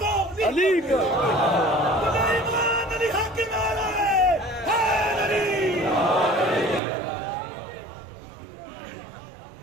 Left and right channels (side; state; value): left; drops out; at 6.8 s